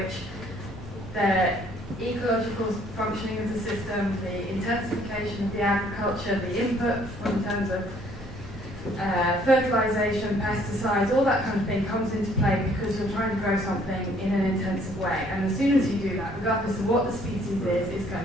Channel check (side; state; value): both; normal; correlation 0.62